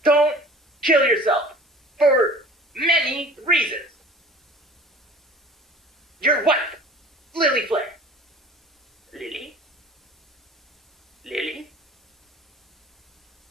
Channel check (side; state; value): both; normal; correlation 0.44